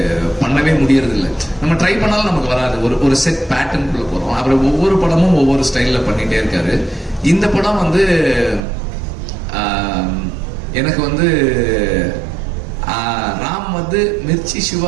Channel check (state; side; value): drops out; left; at 8.6 s